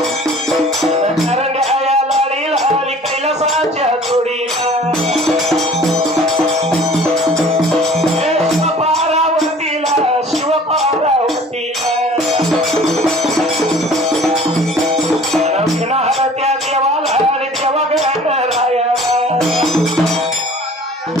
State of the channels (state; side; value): normal; both; correlation 0.48